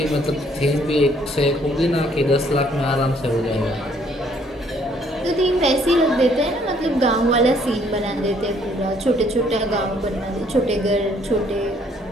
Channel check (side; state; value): both; normal; correlation 0.64